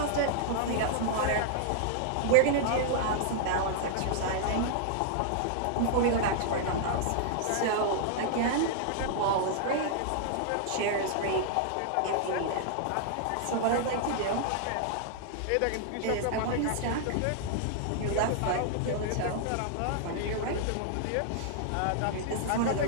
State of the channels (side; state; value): both; different; correlation -0.01